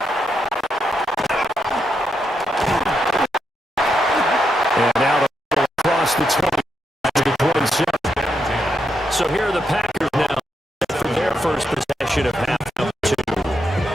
And now the across the 20 to the 27. So here are the Packers now for their first possession of half number 2.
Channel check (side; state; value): both; normal; correlation 0.82